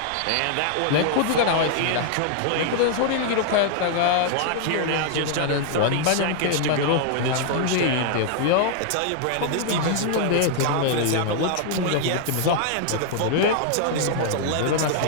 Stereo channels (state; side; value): different; both; correlation -0.01